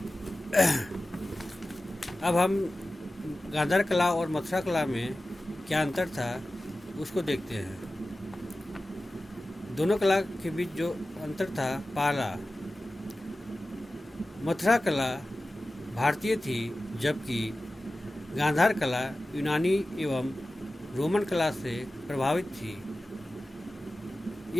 अब हम गांधार कला और मथुरा कला में क्या अंतर था उसको देखते हैं। दोनों कला के बीच जो अंतर था, पहला, मथुरा कला भारतीय थी जबकि गांधार कला यूनानी एवं रोमन कला से प्रभावित थी।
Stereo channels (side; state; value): both; normal; correlation 0.95